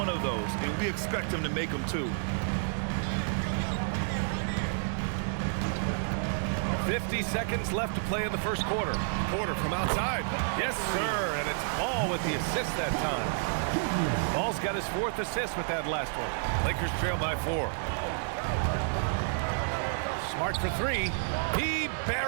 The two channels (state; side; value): silent; left; digital silence